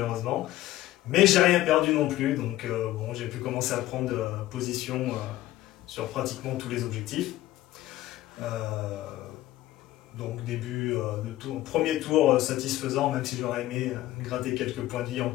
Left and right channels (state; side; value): quieter; right; 15.7 dB